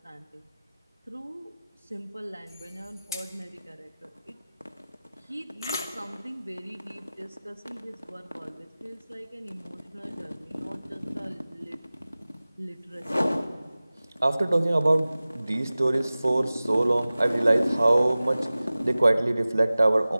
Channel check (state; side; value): inverted; both; correlation -0.98